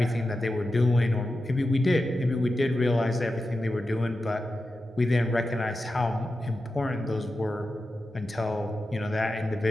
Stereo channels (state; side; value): normal; both; correlation 0.91